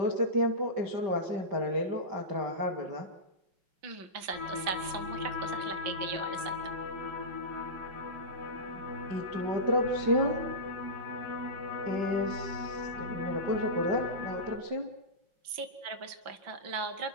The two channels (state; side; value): late; left; 5.8 ms